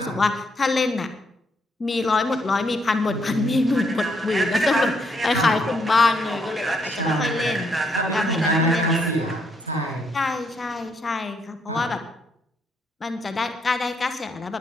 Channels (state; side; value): normal; both; correlation 0.74